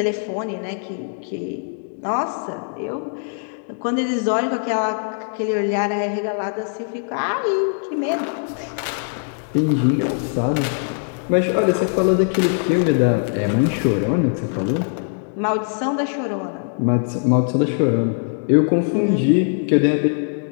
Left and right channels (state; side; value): silent; right; digital silence